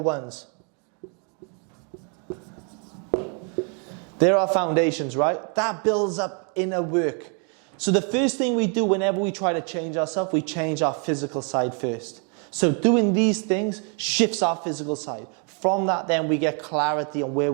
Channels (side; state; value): left; quieter; 38.5 dB